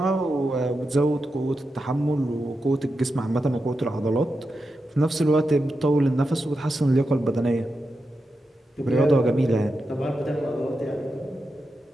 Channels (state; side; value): normal; both; correlation 0.89